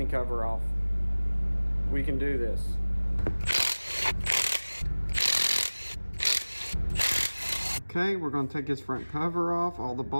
cover off. We can do this. Okay, we're going to take this front cover off. All the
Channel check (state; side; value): inverted; both; correlation -1.00